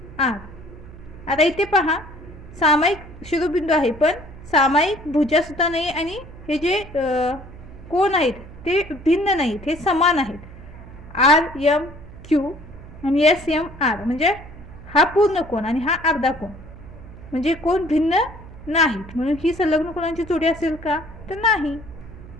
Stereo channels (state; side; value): noise; right; hum, 17 dB below the sound